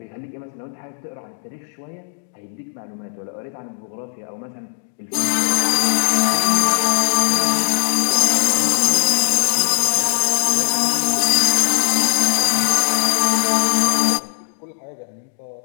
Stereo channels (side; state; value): right; silent; digital silence